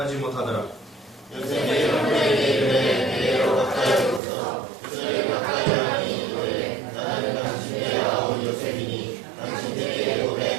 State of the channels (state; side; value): drops out; left; at 4.2 s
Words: 못하더라. 요셉이 형들에게 이르되 내게로 가까이 오소서. 그들이 가까이 하니 이르되 나는 당신의 아우 요셉이니 당신에게